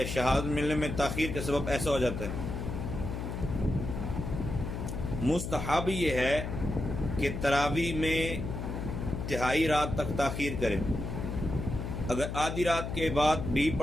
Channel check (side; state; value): left; noise; hum, 5 dB below the sound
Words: ملنے میں تاخیر کا سبب ایسا ہو جاتا ہے۔ مستحب یہ ہے کہ تراویح میں تہائی رات تک تاخیر کریں، اگر آدھی رات کے بعد بھی